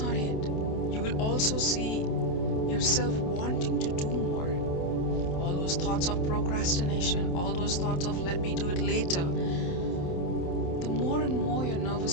it. You will also see yourself wanting to do more. All those thoughts of procrastination, all those thoughts of let me do it later. The more and more your nervous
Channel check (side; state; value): right; late; 28 ms